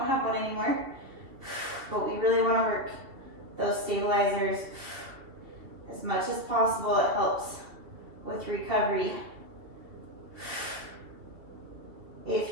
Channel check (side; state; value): left; late; 2.9 ms